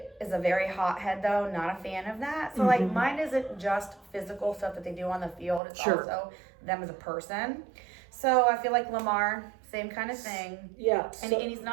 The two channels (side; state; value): left; drops out; at 5.6 s